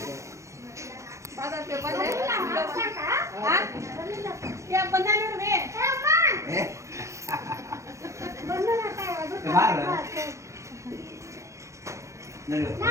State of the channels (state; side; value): late; left; 0.14 ms